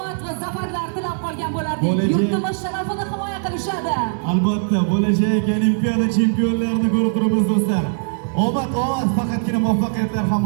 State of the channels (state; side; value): silent; left; digital silence